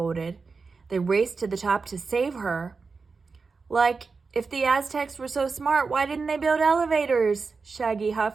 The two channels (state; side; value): quieter; left; 4.6 dB